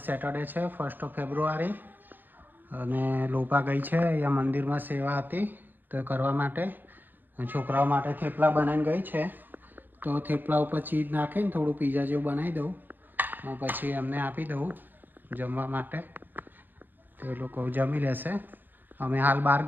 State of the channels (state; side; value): late; left; 0.089 ms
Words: સેટરડે છે, 1 ફેબ્રુઆરી, અને લોપા ગઈ છે અહીંયા મંદિરમાં સેવા હતી તો કરવા માટે. છોકરાઓ માટે થેપલા બનાવીને ગઈ છે. તો થેપલા ઉપર ચીઝ નાખીને થોડું પીઝા જેવું બનાવી દઉં, પછી એમને આપી દઉં જમવા માટે, તો એ લોકો જમી લેશે. અમે હાલ બહાર